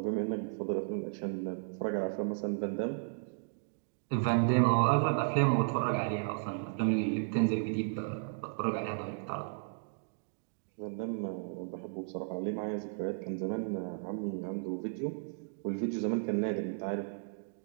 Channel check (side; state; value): left; silent; digital silence